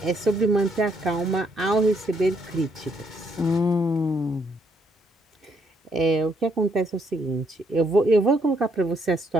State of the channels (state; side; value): normal; both; correlation 0.72